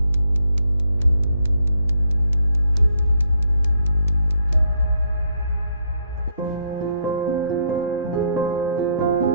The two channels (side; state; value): both; inverted; correlation -0.73